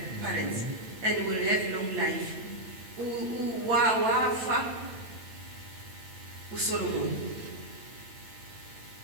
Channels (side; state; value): left; late; 8.7 ms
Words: parents, and we'll have long life. Wafa Solomon.